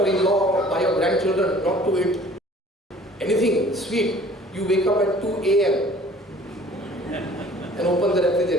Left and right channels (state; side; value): normal; both; correlation 0.51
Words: by your grandchildren not to eat anything sweet, you wake up at 2 a.m. and open the